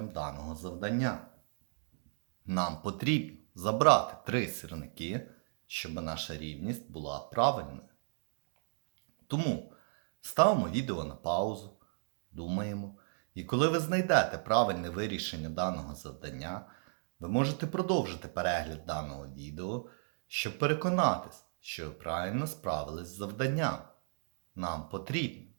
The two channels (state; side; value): silent; left; digital silence